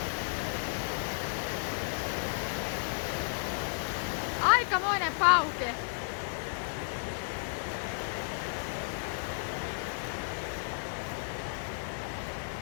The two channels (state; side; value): silent; right; digital silence